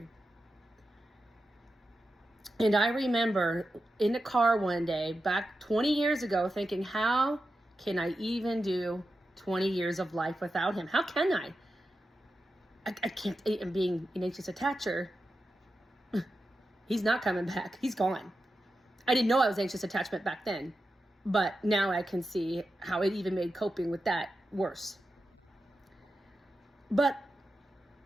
And I remember in the car one day back 20 years ago thinking, how can I even do 20 years of life without him? How can I? I can't. And being an anxious attacher, he's not coming back. He's gone. I didn't know I was anxious attachment back then, but now I can see how it even made coping with that worse. But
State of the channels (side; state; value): both; normal; correlation 0.90